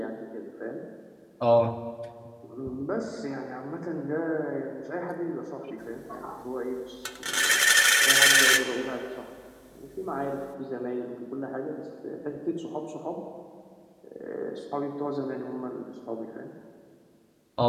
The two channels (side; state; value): both; identical; correlation 1.00